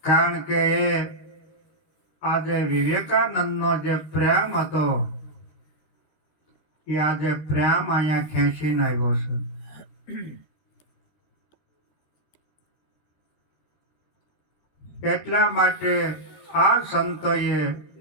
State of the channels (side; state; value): right; late; 13 ms